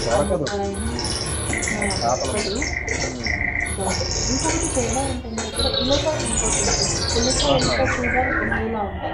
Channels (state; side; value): identical; both; correlation 1.00